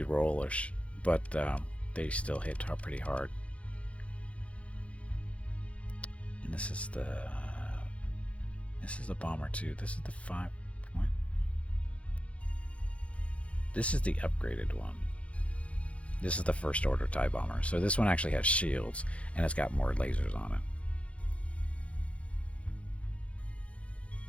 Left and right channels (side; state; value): right; late; 0.063 ms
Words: but they still hit pretty hard. And this is the bomber too. This is the 5 point. This is the upgraded one. This is the First Order TIE bomber. So this one actually has shields, and it's got more lasers on it.